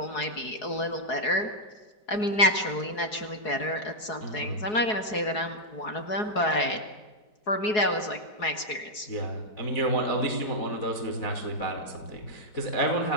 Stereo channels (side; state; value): right; late; 4.7 ms